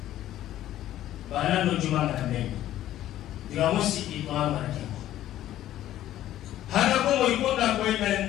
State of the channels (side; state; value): right; quieter; 13.1 dB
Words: Bana berjuang raya ni. Tiga musik itu Tuhan mengajar. Hana ko mo ikonda ko